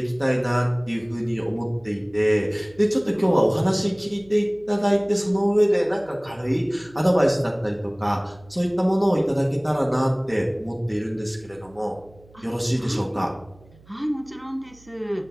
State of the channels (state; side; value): noise; right; hum, 26 dB below the sound